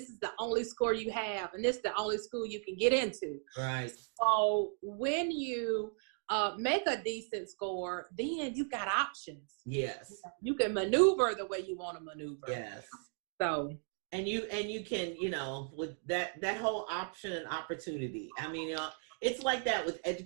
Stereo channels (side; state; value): left; silent; 54 dB below the other